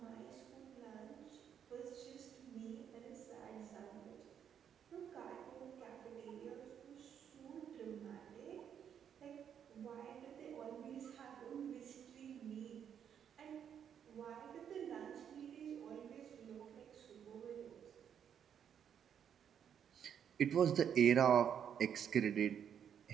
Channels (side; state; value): left; quieter; 8.5 dB